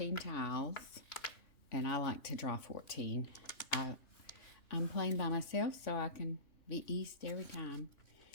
tiles, and I like to draw 14. I'm playing by myself, so I can be east every time.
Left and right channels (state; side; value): late; right; 3.1 ms